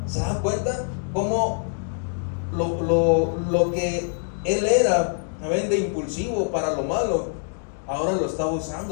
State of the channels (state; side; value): silent; right; digital silence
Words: ¿se dan cuenta cómo lo que él era de impulsivo para lo malo, ahora lo estaba